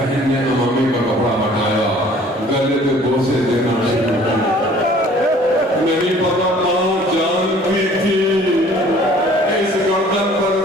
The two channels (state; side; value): normal; both; correlation 0.53